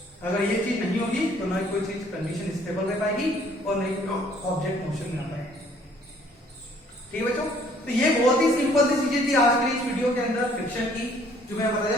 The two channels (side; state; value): both; normal; correlation 0.60